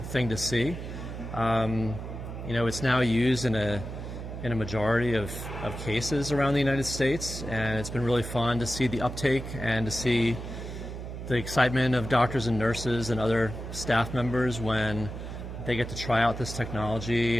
thing to see. It's now used in a majority of cases around the United States, and it's been really fun to see the uptake and to see the excitement of doctors and nurses and other staff members when they get to try out this technology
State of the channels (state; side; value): noise; right; hum, 8 dB below the sound